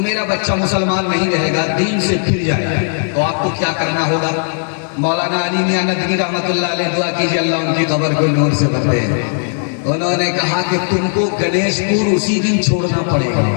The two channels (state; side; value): silent; right; 64 dB below the other